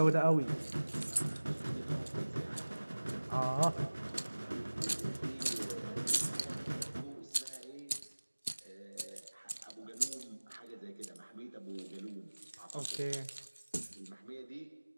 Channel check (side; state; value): both; inverted; correlation -1.00